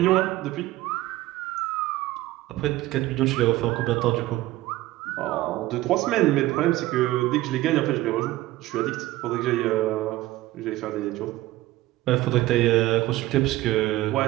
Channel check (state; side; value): quieter; left; 16.9 dB